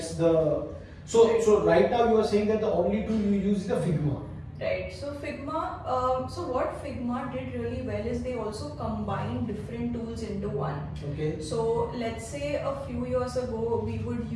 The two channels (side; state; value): both; identical; correlation 1.00